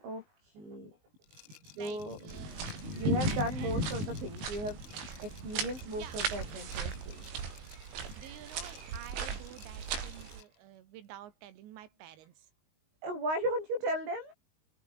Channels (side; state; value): left; late; 19 ms